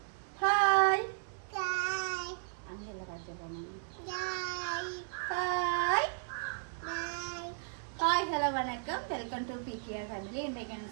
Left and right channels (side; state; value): left; silent; 54 dB below the other